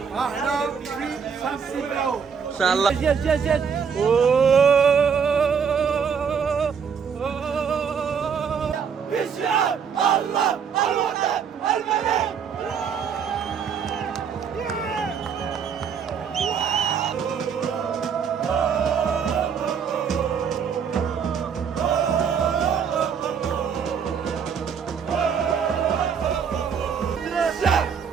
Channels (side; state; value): left; quieter; 6.8 dB